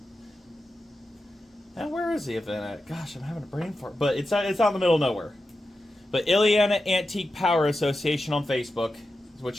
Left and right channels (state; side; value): normal; both; correlation 0.91